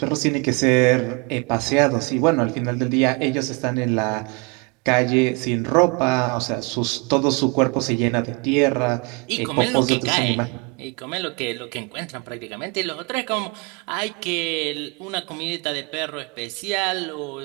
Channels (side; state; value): left; quieter; 29.5 dB